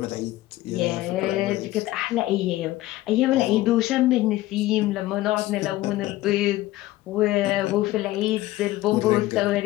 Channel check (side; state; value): right; quieter; 16.7 dB